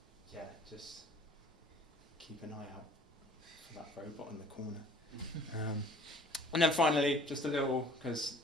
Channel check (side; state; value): both; normal; correlation 0.52